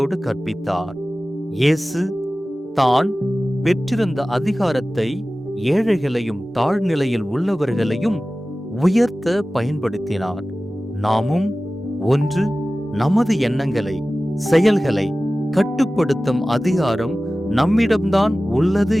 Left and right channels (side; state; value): both; normal; correlation 0.96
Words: கற்பித்தார். இயேசு தான் பெற்றிருந்த அதிகாரத்தை ஏழைகளையும் தாழ்நிலையில் உள்ளவர்களையும் உயர்த்த பயன்படுத்தினார். நாமும் ஒன்று, நமது எண்ணங்களை செயல்களை கட்டுப்படுத்தும் அதிகாரம் நம்மிடம்தான் உள்ளது